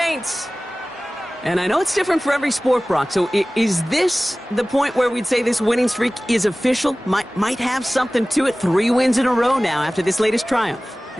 And I know it's different for every sport, Brock. So is this the point where we'd say this winning streak is official? Might have something to it. 3 wins in a row now after this latest triumph.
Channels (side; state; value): both; normal; correlation 0.98